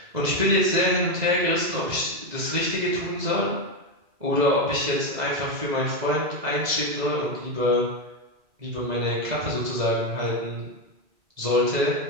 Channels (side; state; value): left; late; 2.0 ms